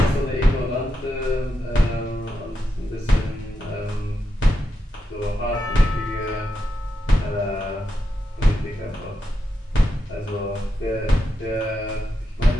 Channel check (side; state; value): both; normal; correlation 0.86